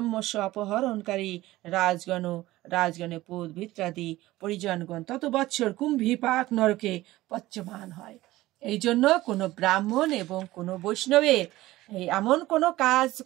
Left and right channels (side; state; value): left; quieter; 17.2 dB